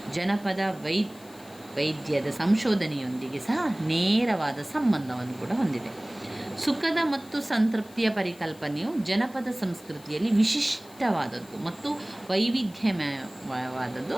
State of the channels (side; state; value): left; noise; hiss, 23 dB below the sound